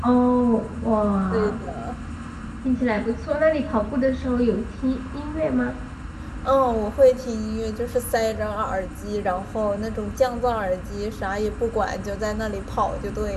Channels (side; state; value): both; identical; correlation 1.00